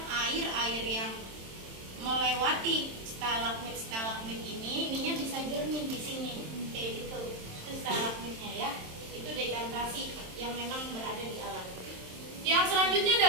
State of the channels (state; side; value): late; left; 27 ms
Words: air yang melewati stalagmit ininya bisa jernih di sini kayak gitu. Itu stalagmitnya ya. Itu dekantasi yang memang berada di alam. Yang selanjutnya